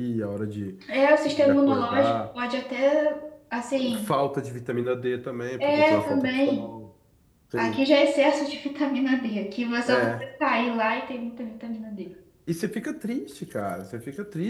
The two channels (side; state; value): both; identical; correlation 1.00